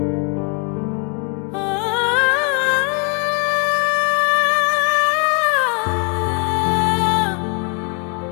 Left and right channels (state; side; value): quieter; right; 37.5 dB